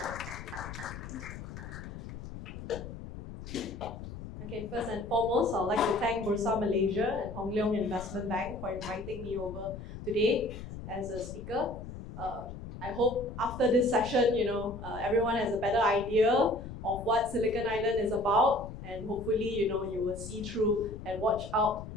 Okay, first and foremost, I'd like to thank Bursa Malaysia and Hong Leong Investment Bank for inviting me over today as a speaker. I hope after this session, everyone has a better idea of what Silicon Island is about, and hopefully, you will see through and watch out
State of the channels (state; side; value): noise; left; rumble, 10 dB below the sound